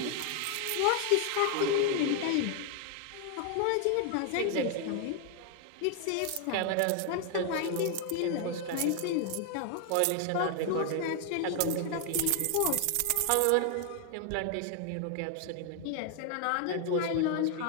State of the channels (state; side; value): different; both; correlation 0.00